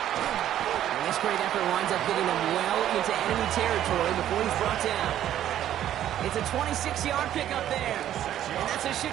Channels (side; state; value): left; quieter; 11.6 dB